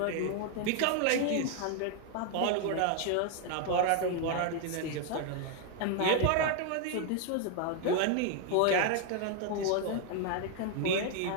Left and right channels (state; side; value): different; both; correlation 0.00